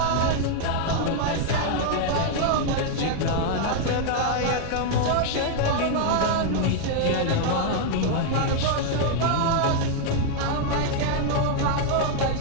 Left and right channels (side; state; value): both; different; correlation 0.00